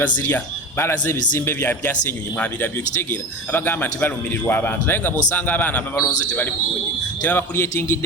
balaze ebizimbe byasenyonyi mwabirabyo kitegeera abagamba nti balumirirwa abantu naye nga bw'osanga abaana ababalonze tebali bulungi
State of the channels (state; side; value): normal; both; correlation 0.28